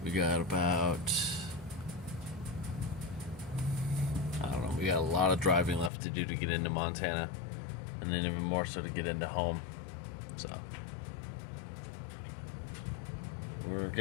We got about, I don't know, we got a lot of driving left to do to get into Montana, and then even more so to get into home. So we're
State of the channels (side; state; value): right; drops out; at 5.9 s